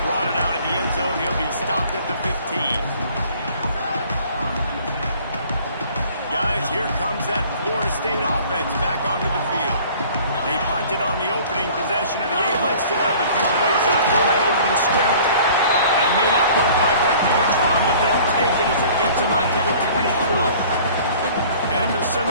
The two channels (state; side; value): inverted; both; correlation -0.50